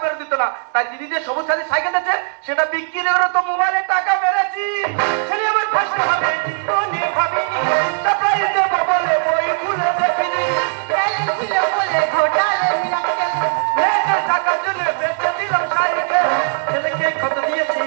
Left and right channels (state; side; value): silent; left; digital silence